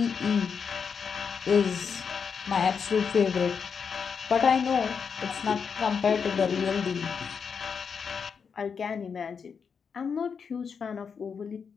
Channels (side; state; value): right; quieter; 6.2 dB